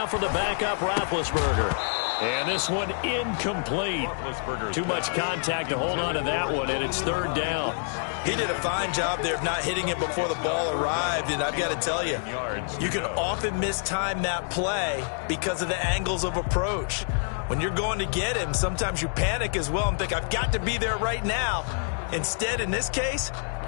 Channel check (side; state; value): right; silent; digital silence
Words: for the backup Roethlisberger. And this one incomplete. Too much contact to hold on to that one, and it's 3rd down. He did a fine job there of not hitting it before the ball arrived, and I've got to tell you, you can often mistime that play because of the angles of approach. When you're going to get him, sometimes you panic as well and think, I've got to be there right now. Instead, in this case,